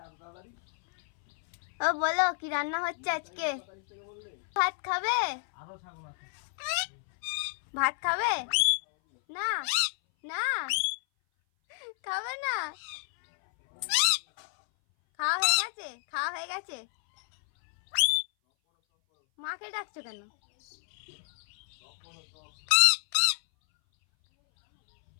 ও বলো কি রান্না হচ্ছে আজকে? ভাত খাবে? ভাত খাবে না? না খাবে না? খাওয়া হয়ে গেছে? খাওয়া হয়ে গেছে? মাকে ডাকছো কেন?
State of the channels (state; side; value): silent; right; 58 dB below the other